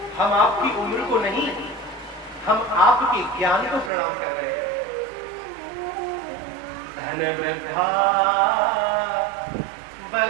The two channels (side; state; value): left; drops out; at 3.9 s